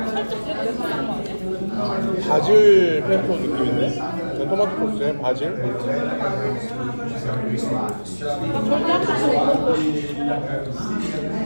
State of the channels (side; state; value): both; inverted; correlation -1.00